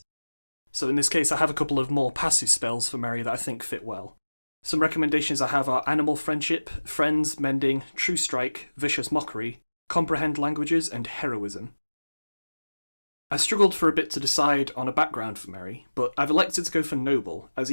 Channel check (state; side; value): inverted; both; correlation -1.00